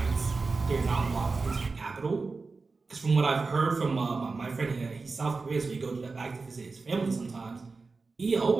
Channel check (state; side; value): quieter; left; 4.1 dB